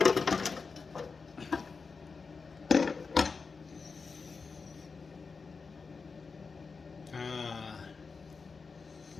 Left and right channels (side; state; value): right; quieter; 4.8 dB